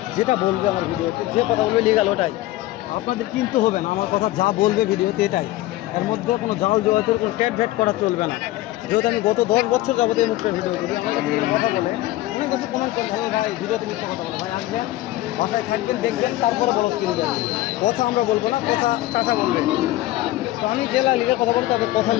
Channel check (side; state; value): right; quieter; 16.4 dB